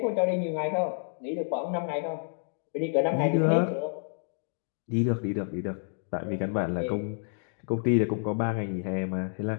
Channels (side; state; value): right; silent; digital silence